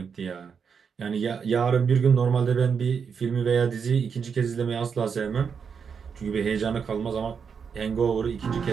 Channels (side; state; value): left; quieter; 6.4 dB